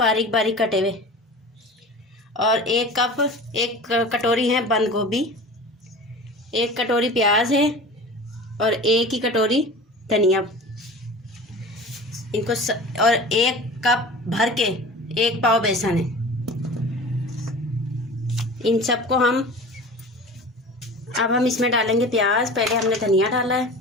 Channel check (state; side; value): normal; both; correlation 0.37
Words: बारीक कटे हुए, और एक कटोरी है बंद गोभी, एक कटोरी प्याज है, और एक ही कटोरी धनिया। और एक कप भर के 1 पाव बेसन है। इन सबको अब हम इसमें डालेंगे प्याज। पहले हमने धनिया डाला है,